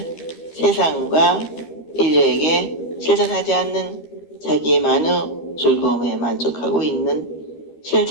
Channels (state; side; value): late; right; 13 ms